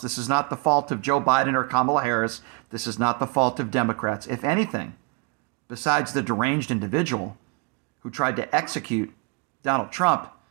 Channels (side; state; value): left; quieter; 30.7 dB